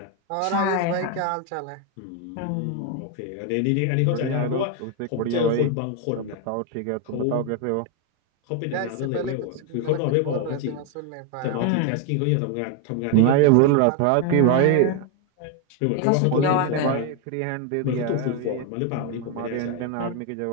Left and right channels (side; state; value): both; different; correlation 0.01